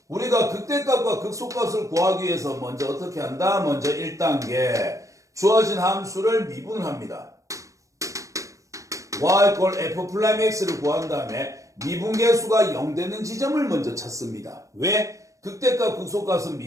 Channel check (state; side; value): late; left; 0.16 ms